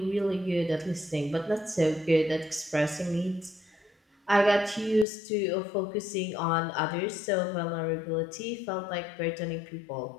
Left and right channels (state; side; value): drops out; right; at 5.1 s